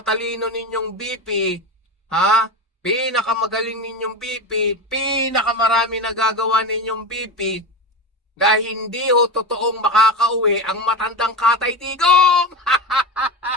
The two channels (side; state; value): both; normal; correlation 0.23